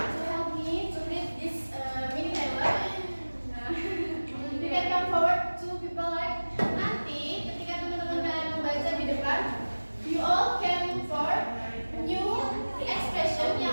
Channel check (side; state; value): both; inverted; correlation -1.00